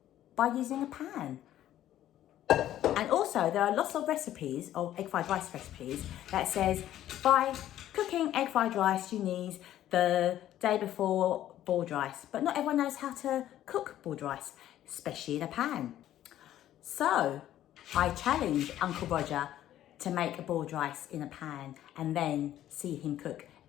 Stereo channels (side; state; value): right; quieter; 12.5 dB